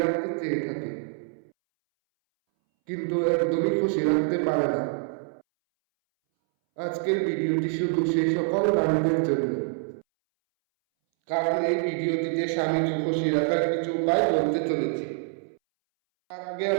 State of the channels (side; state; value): left; silent; 61 dB below the other